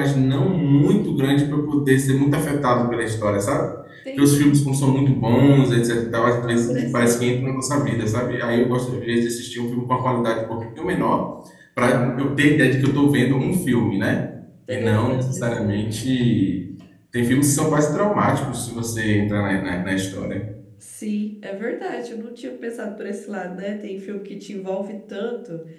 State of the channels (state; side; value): identical; both; correlation 1.00